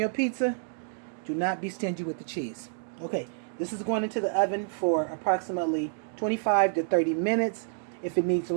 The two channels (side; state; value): left; silent; digital silence